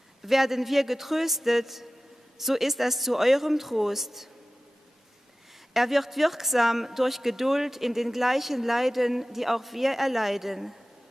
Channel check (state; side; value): normal; both; correlation 0.96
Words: Werden wir getröstet, so ist das zu eurem Trost. Er wird wirksam durch Geduld in den gleichen Leiden, die auch wir erleiden.